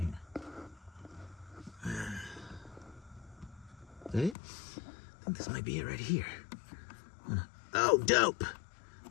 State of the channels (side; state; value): right; drops out; at 4.4 s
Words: Is that it? I think this might be it right here. Oh, dope!